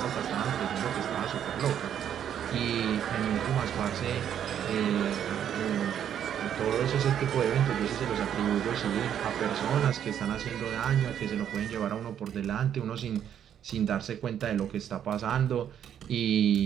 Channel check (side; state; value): left; quieter; 9.5 dB